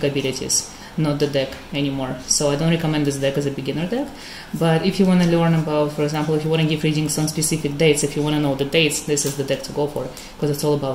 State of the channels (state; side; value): identical; both; correlation 1.00